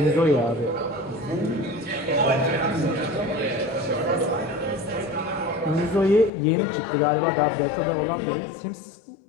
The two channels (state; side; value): drops out; right; at 6.3 s